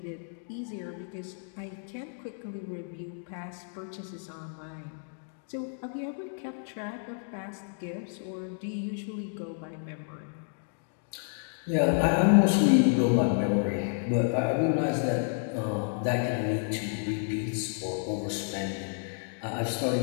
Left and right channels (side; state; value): right; silent; digital silence